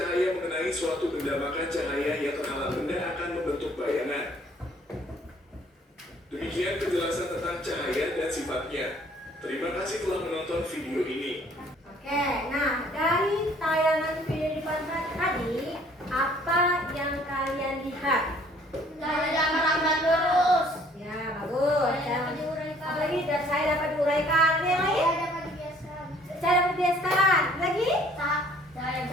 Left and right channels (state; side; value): normal; both; correlation 0.58